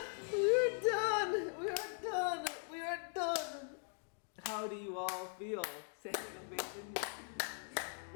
We're done. We are done. We are done. How do you all feel? Standing ovation.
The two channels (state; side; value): silent; right; 51 dB below the other